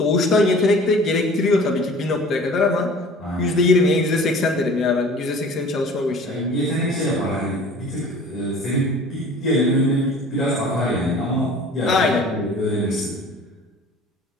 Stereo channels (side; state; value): both; normal; correlation 0.45